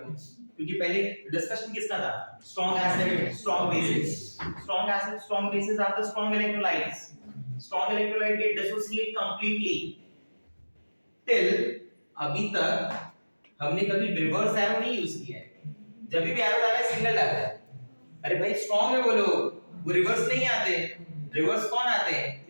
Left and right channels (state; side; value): inverted; both; correlation -1.00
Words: को, क्योंकि पहले डिस्कशन किसका था, strong acid strong bases, strong acid strong bases are the strong electrolytes, strong electrolyte get dissociate completely. Till अभी तक हमने कभी रिवर्स एरो नहीं यूज किया है, जब भी एरो डाला है सिंगल डाला है। अरे भाई स्ट्रांग है बोलो, वो रिवर्स नहीं आते, रिवर्स कौन आते हैं,